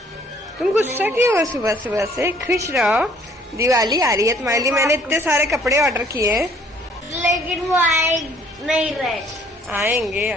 तुम गुस्सा क्यों हो सुबह सुबह से? खुश रहो, दिवाली आ रही है तुम्हारे लिए। मैंने इतने सारे कपड़े ऑर्डर किए हैं, लेकिन वो आए नहीं रहे। आएंगे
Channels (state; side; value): normal; both; correlation 0.59